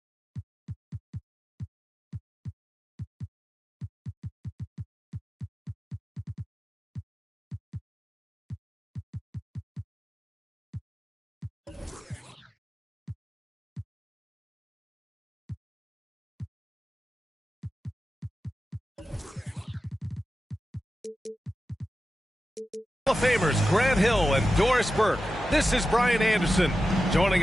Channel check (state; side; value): normal; both; correlation 0.92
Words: Hall of Famers Grant Hill and Doris Burke. This is Brian Anderson. Joining